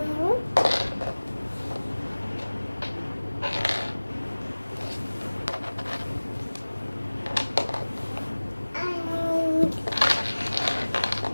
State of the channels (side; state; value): both; inverted; correlation -1.00